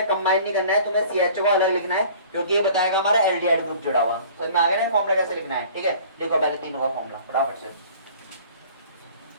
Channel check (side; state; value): both; inverted; correlation -0.48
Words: कंबाइन नहीं करना है, तुम्हें CHO को अलग लिखना है, क्योंकि ये बताएगा हमारा एल्डिहाइड ग्रुप जुड़ा हुआ। समझ में आ गया ना फॉर्मूला कैसे लिखना है, ठीक है। देखो पहले तीनों का फॉर्मूला फटाफट से,